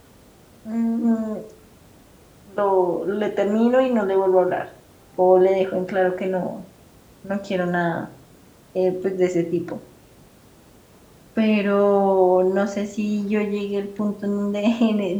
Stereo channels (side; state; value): both; identical; correlation 1.00